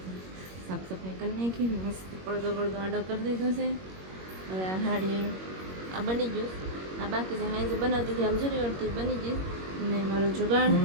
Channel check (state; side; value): late; left; 21 ms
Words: સાફ સફાઈ કરી નાખી, મસ્ત પડદો આડો કરી દીધો છે. હવે આ સાડી આ બની ગયું, આ બાકી છે હાઈ જે બનાવતી હતી આમ જોરી વળતી બની ગઈ. ને મારો જુગાડ